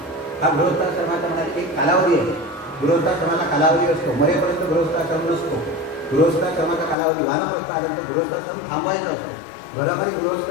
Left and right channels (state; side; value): drops out; right; at 7.0 s